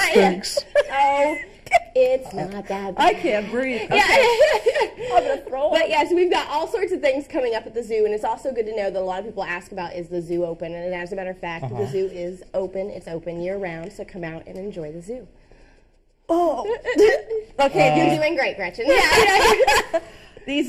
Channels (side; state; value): both; identical; correlation 1.00